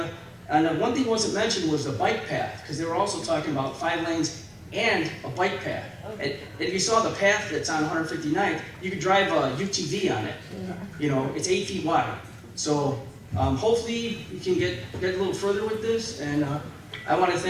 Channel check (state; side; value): identical; both; correlation 1.00